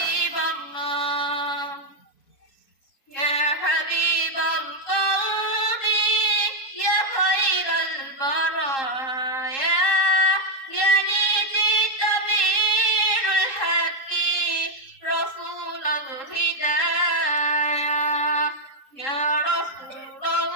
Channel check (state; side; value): late; right; 3.7 ms